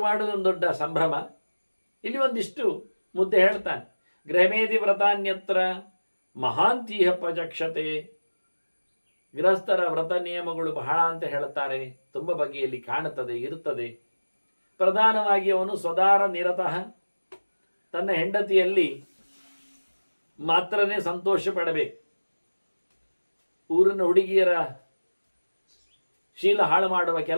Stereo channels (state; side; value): inverted; both; correlation -1.00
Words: ಮಾಡುವುದು ಒಂದು ದೊಡ್ಡ ಸಂಭ್ರಮ. ಇಲ್ಲಿ ಒಂದಿಷ್ಟು ಮುದ್ದೆ ಹೇಳ್ತಾನೆ. ಗೃಹಮೇಧಿ ವ್ರತಾನ್ಯತ್ರ ಮಹಾಂತೀಹ ಪ್ರಜಕ್ಷತೆ. ಗೃಹಸ್ಥರ ವ್ರತ ನಿಯಮಗಳು ಬಹಳ ಅಂತ ಹೇಳುತ್ತಾರೆ, ತುಂಬ ಬಗೆಯಲ್ಲಿ ಕಾಣುತ್ತದೆ, ಇರುತ್ತದೆ. ಪ್ರಧಾನವಾಗಿ ಅವನು ಸ್ವದಾರ ನಿರತಃ, ತನ್ನ ಹೆಂಡತಿಯಲ್ಲಿ ಮಾತ್ರನೇ ಸಂತೋಷ ಪಡಬೇಕು. ಊರಿನ ಹುಡುಗಿಯರ ಶೀಲ ಹಾಳು ಮಾಡುವ